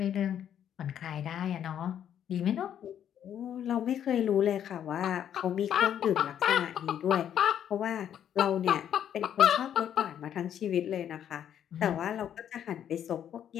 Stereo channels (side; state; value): right; quieter; 9.7 dB